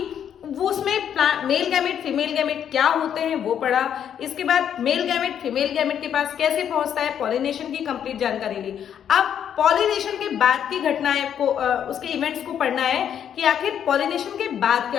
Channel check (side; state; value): right; quieter; 9.1 dB